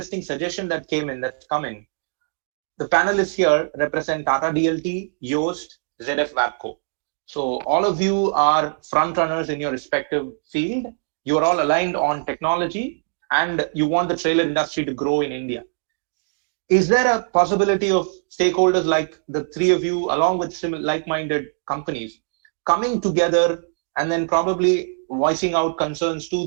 suggestion that's come in. The panelists here represent Tata DLT, Yoast, ZF WABCO. So all of you are front runners in your respective field. You are all aligned on technology and you want the trailer industry to grow in India. Is there a possibility of stakeholders like the three of you, along with like-minded companies, coming together and then probably voicing out concerns to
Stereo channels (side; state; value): left; silent; 64 dB below the other